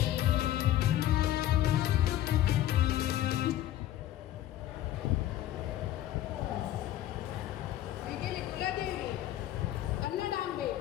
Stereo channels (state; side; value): quieter; right; 13.1 dB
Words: वैगेरे कुलदेवी, कन्नडांबे,